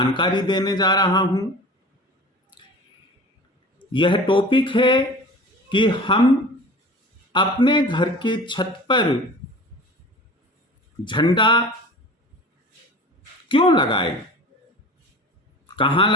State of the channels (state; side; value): normal; both; correlation 0.39